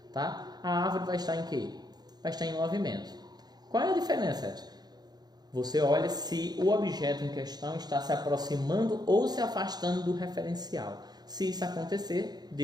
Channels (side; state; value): left; late; 0.20 ms